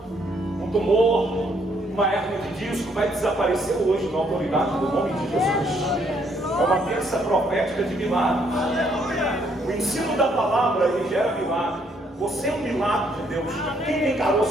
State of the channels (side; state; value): both; normal; correlation 0.69